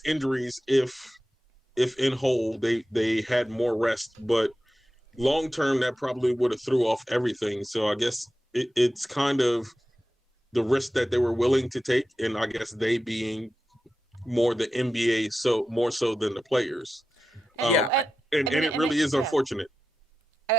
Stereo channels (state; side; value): normal; both; correlation 0.92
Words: injuries if in whole they had more rest, but long term, that probably would have threw off everything. So I guess it's kind of the risk that they were willing to take, and I guess they being more the NBA, so more so than the players. And it really is unfortunate.